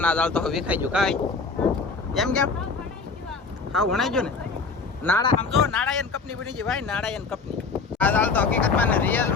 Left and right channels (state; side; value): quieter; right; 4.5 dB